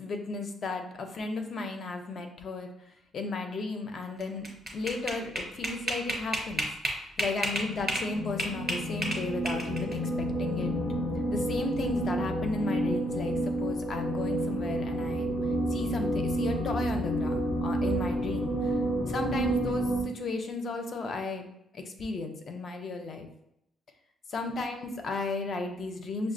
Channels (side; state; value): both; normal; correlation 0.72